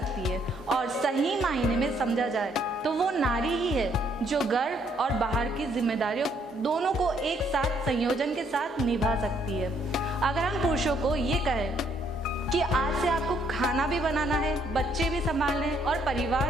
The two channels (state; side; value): normal; both; correlation 0.69